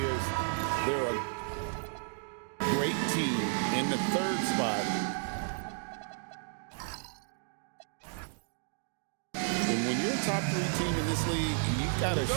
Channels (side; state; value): left; silent; digital silence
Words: They're a great team in the 3rd spot. And when you're a top 3 team in this league, you've got a